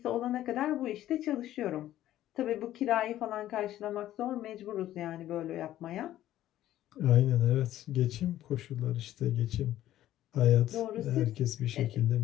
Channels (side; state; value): right; quieter; 13.3 dB